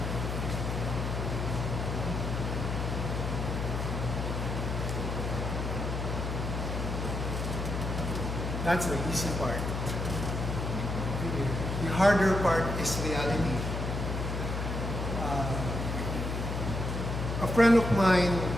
That's the easy part. The harder part is reality. A friend of mine,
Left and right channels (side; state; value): left; noise; hum, 2 dB below the sound